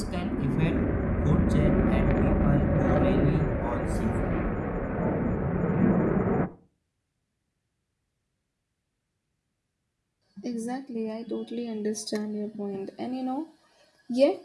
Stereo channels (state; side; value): identical; both; correlation 1.00